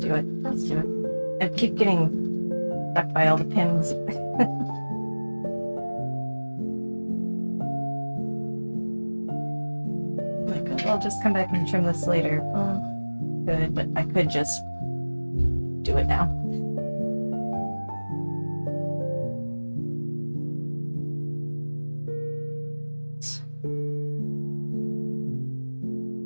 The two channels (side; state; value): both; inverted; correlation -1.00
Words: do it. Let's do it. I keep getting stuck by all the pins. Like, I'll just come back and trim this later. Good, but I could just do it now.